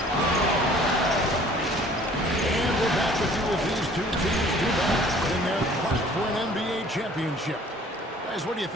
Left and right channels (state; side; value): normal; both; correlation 0.53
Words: And we're back with you as these two teams do battle in their quest for an NBA championship. Guys, what do you